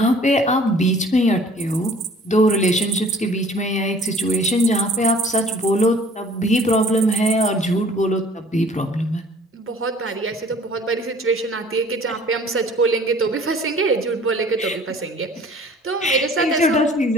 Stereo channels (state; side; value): normal; both; correlation 0.52